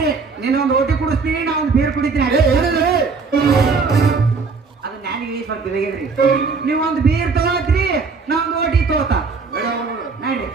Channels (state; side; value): quieter; left; 4.7 dB